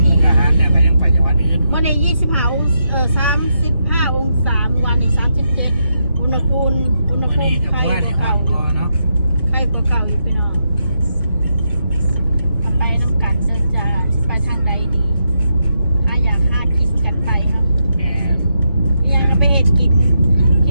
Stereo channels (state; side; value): inverted; both; correlation -0.83